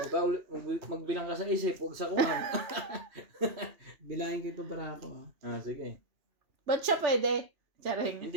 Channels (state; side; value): late; left; 3.1 ms